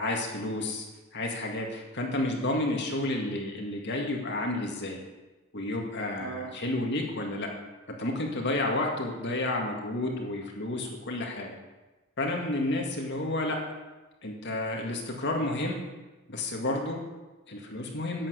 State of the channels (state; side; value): normal; both; correlation 0.24